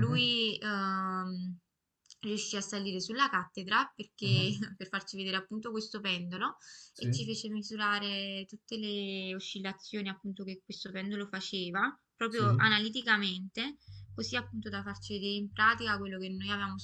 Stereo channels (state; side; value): identical; both; correlation 1.00